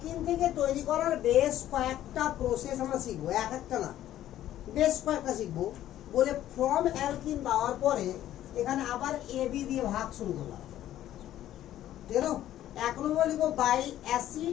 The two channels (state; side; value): quieter; right; 12.7 dB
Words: থেকে তৈরি করার বেশ কয়েকটা প্রসেস আমরা শিখবো এক একটা না বেশ কয়েকটা শিখবো বলে ফ্রম অ্যালকিন দেওয়ার পরে এখানে আবার AB দিয়ে ভাগ শুরু করলাম ঠিক আছে এক নম্বর লিখবো by